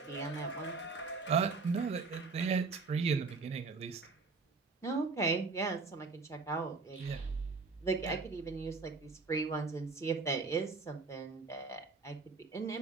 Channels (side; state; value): left; quieter; 4.2 dB